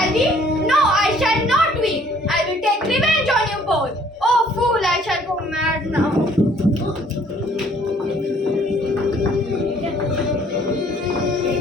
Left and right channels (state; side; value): normal; both; correlation 0.60